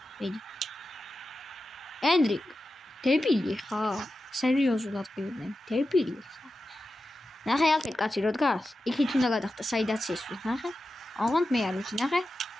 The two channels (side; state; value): both; normal; correlation 0.92